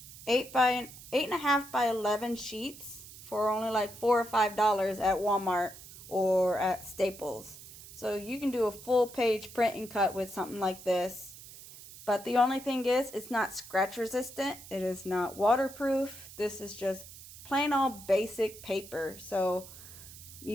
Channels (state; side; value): noise; right; hiss, 16 dB below the sound